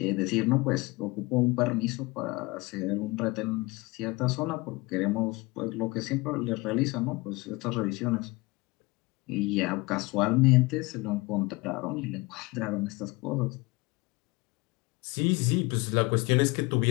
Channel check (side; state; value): right; quieter; 23.7 dB